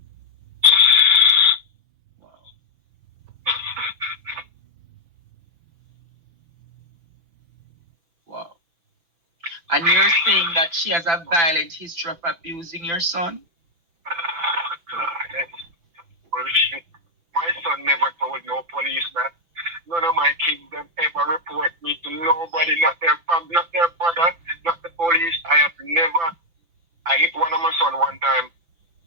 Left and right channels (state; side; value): late; left; 6.0 ms